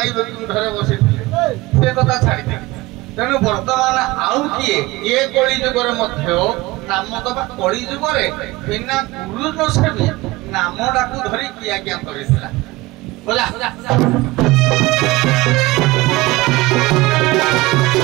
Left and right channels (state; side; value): quieter; left; 20.5 dB